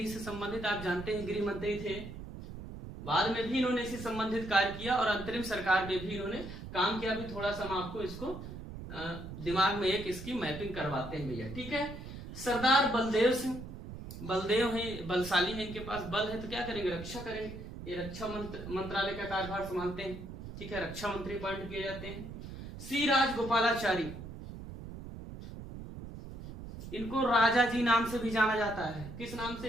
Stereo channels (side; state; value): right; noise; rumble, 10 dB below the sound